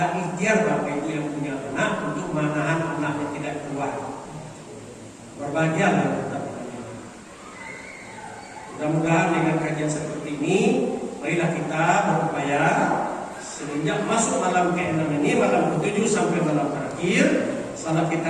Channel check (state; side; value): identical; both; correlation 1.00